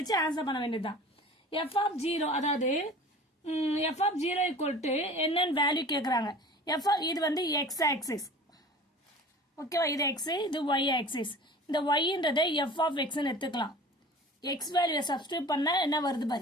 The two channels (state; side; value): normal; both; correlation 0.41